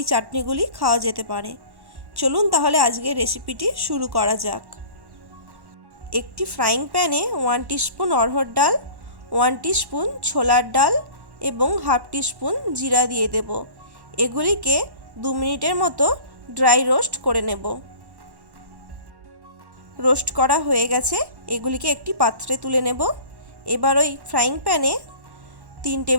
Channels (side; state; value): left; late; 1.1 ms